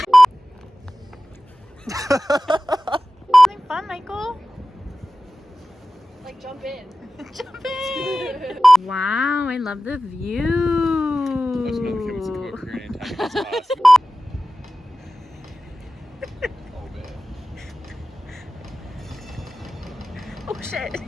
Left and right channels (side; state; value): both; normal; correlation 0.95